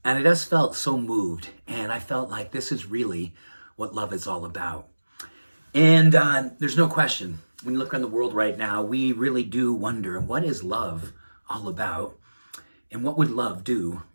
and I just felt so moved. And I felt like this is really what love is all about. And there's no question, when you look around the world right now, we really do wonder, what is love all about? And what would love do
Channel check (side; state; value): both; inverted; correlation -1.00